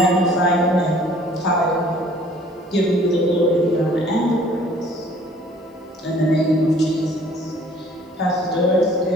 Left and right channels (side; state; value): both; normal; correlation 0.55